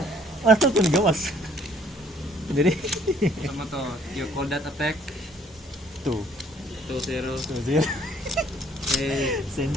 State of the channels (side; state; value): both; normal; correlation 0.60